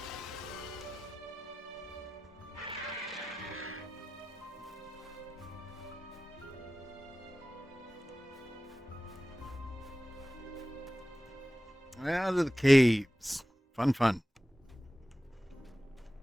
Out of the caves. Fun, fun.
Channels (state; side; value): normal; both; correlation 0.95